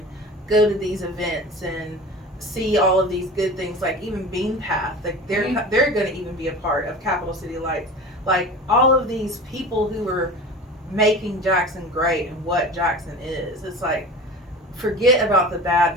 go to these events and see all of these good things, like even Bean Path, like they're going to even be a part of Capital City Lights. Like all of these people who are making Jackson great and what Jackson is. It's like, forget about the bad.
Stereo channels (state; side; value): normal; both; correlation 0.36